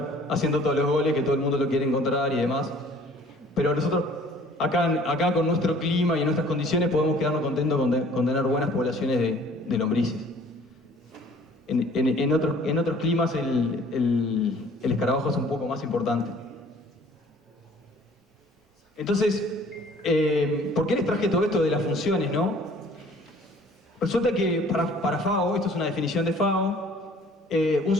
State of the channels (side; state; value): both; normal; correlation 0.53